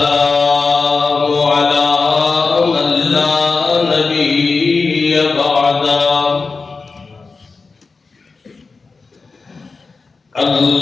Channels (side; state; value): right; quieter; 4.3 dB